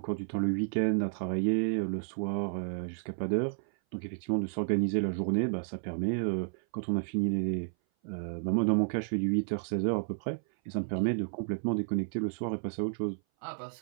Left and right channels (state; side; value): silent; left; 57 dB below the other